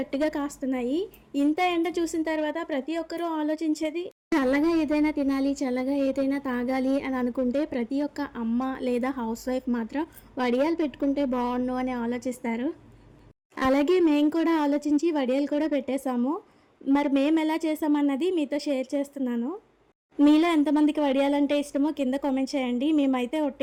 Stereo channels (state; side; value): identical; both; correlation 1.00